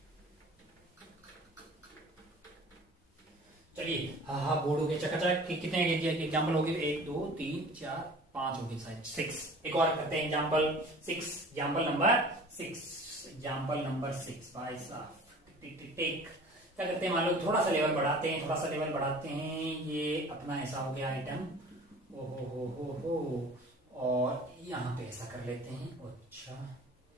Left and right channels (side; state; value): both; normal; correlation 0.44